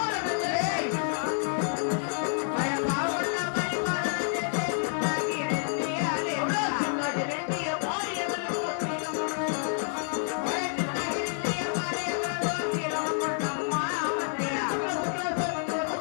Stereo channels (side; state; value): right; silent; 59 dB below the other